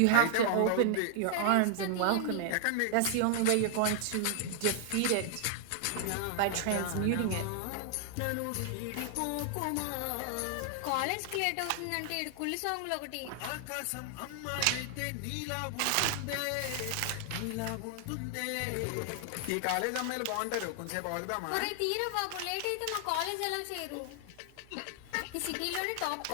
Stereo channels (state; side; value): different; both; correlation 0.00